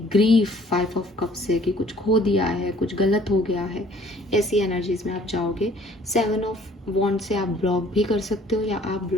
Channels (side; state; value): both; normal; correlation 0.57